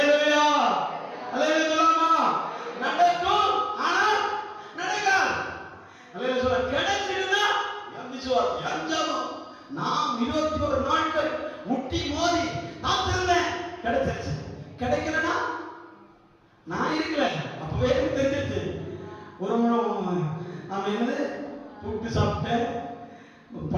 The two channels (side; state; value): both; identical; correlation 1.00